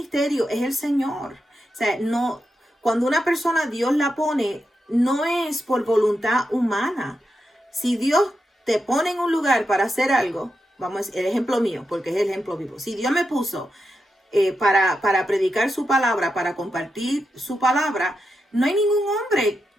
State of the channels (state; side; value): normal; both; correlation 0.86